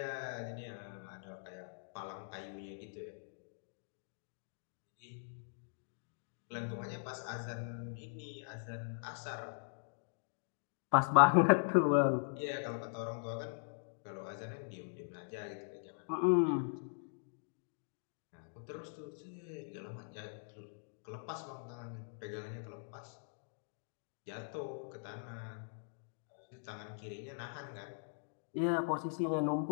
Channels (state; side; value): silent; right; digital silence